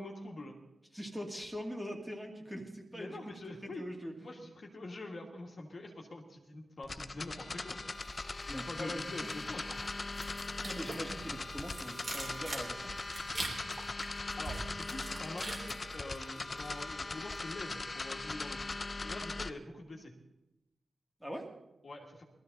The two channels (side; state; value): both; normal; correlation 0.95